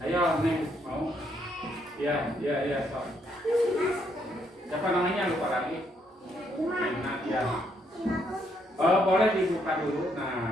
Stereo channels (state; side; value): normal; both; correlation 0.73